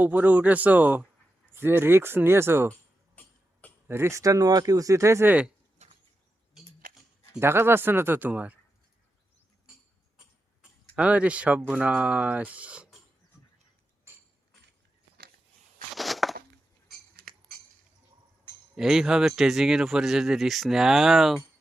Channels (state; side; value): normal; both; correlation 0.89